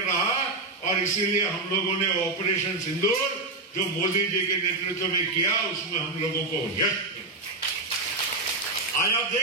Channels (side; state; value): left; quieter; 3.2 dB